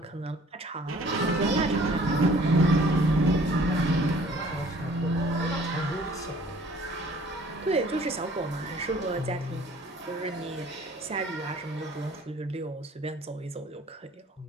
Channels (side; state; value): both; normal; correlation 0.54